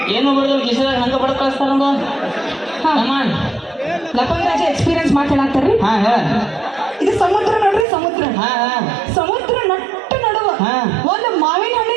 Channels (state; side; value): drops out; left; at 7.9 s